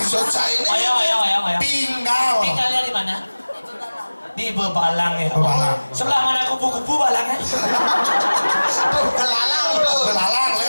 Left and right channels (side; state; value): both; inverted; correlation -1.00